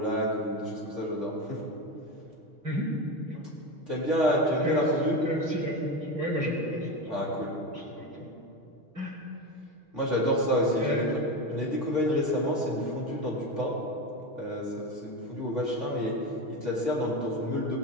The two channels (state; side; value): late; left; 6.4 ms